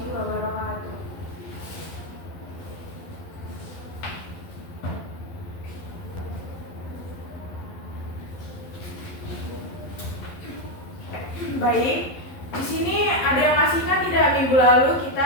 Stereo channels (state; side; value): late; right; 11 ms